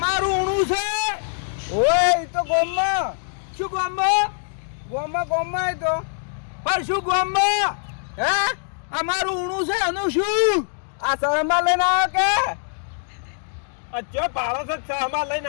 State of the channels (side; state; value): right; silent; digital silence